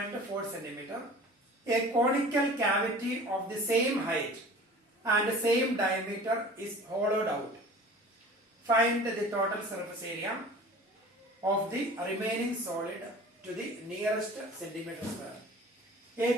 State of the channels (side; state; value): both; normal; correlation 0.43